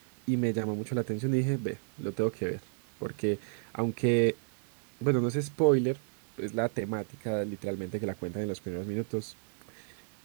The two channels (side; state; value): left; silent; digital silence